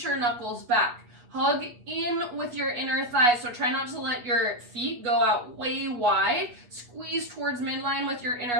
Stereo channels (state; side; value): late; left; 8.2 ms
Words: your knuckles back. Hug in with your inner thighs. So try not to let your feet go out way wide. Squeeze towards midline with your